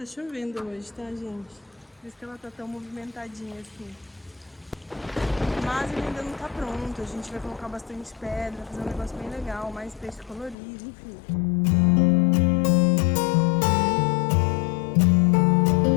chovendo hoje, tá, gente? Por isso que ela tá tão movimentadinha assim. Mas ele ainda não tá pronto. A gente vai colocar bastante pedra, fazer um negócio bem legal, mais peixe colorido, enfim.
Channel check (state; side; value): drops out; right; at 10.6 s